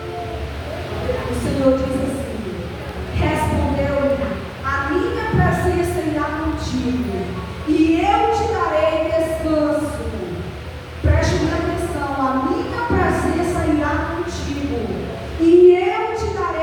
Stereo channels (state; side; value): identical; both; correlation 1.00